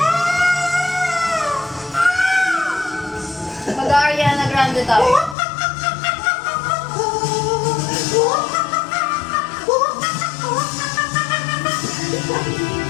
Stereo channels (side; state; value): right; drops out; at 5.4 s